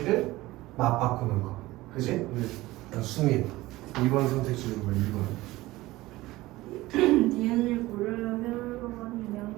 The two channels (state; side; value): quieter; left; 18.5 dB